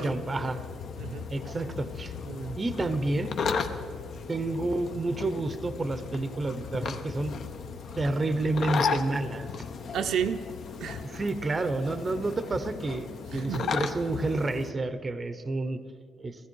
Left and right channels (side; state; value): both; normal; correlation 0.82